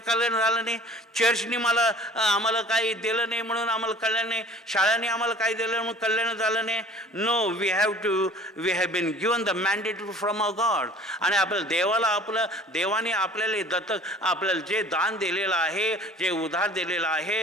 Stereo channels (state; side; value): normal; both; correlation 0.47